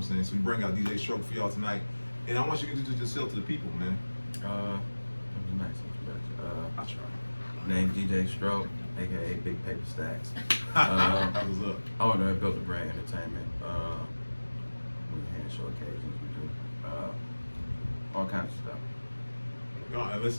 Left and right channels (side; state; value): both; inverted; correlation -1.00